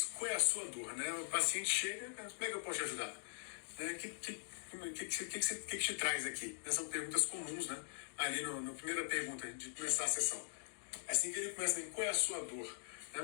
Qual é a sua dor? Né? O paciente chega, como é que eu posso te ajudar? O que te traz aqui? Essas são perguntas comuns, né? Ali na primeira pergunta de começar a sessão. Assim que ele começa, qual é a sua dor?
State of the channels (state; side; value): silent; right; digital silence